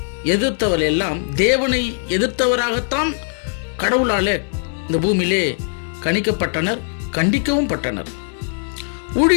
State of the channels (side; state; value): right; silent; 63 dB below the other